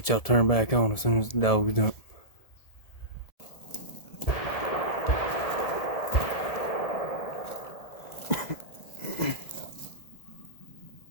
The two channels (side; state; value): right; late; 1.7 ms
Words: y'all turned back on as soon as the dog's done.